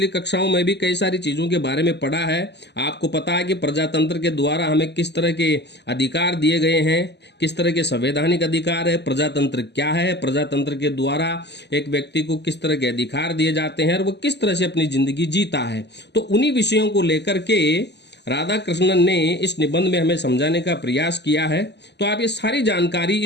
कक्षाओं में भी कई सारी चीज़ों के बारे में पढ़ा है। आपको पता है कि प्रजातंत्र के द्वारा हमें किस तरह के अधिकार दिए गए हैं, किस तरह के संवैधानिक अधिकार है, प्रजातंत्र क्या है, प्रजातंत्र के द्वारा एक व्यक्ति को किस तरह के अधिकार दिए जाते हैं और वो किस तरह से अपनी जिंदगी जीता है। तो उन्हीं विषयों को लेकर के राधा कृष्णन ने इस निबंध में हमें समझाने का प्रयास किया है। तो आप ये सारी जानकारी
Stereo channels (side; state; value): right; late; 0.50 ms